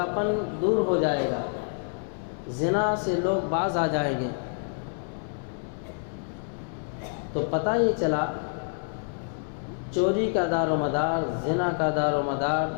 دور ہو جائے گا، زنا سے لوگ باز آ جائیں گے۔ تو پتہ یہ چلا چوری کا دار و مدار، زنا کا دار و مدار،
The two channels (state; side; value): silent; right; 60 dB below the other